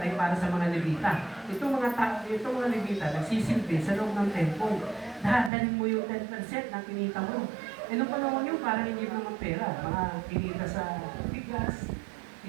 para sa mga Levita. Itong mga Levita, nagsisilbi sa loob ng temple. Dadalhin mo yung 10% ng kinita mo. E nung panahon yun, parang hindi mo naman pera. Mga kinita sa bigas,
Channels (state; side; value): drops out; left; at 5.5 s